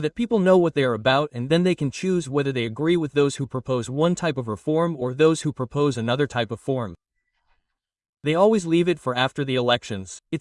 that people know what they are about and then they can choose whether they agree with those who propose one type of reform or those who propose another type of form. They always leave it for after the elections.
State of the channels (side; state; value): both; identical; correlation 1.00